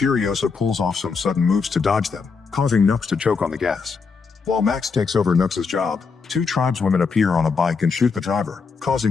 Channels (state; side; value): quieter; right; 5.1 dB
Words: pulls off some sudden moves to dodge them, causing Nux to choke on the gas. While Max takes over Nux's job, two tribeswomen appear on a bike and shoot the driver,